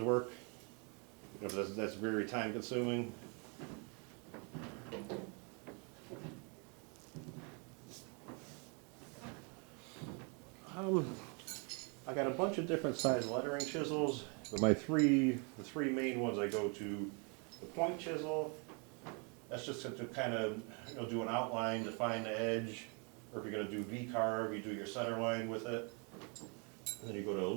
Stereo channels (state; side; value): quieter; left; 35.3 dB